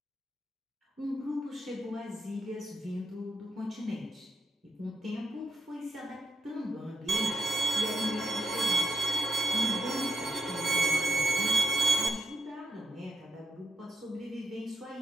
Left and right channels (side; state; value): both; normal; correlation 0.78